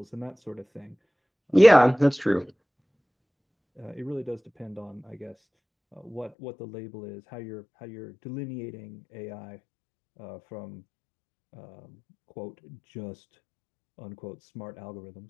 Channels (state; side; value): drops out; right; at 6.3 s